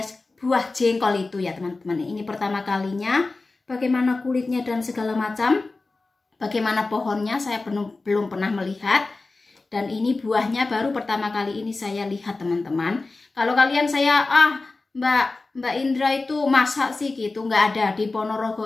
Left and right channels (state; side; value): quieter; right; 3.5 dB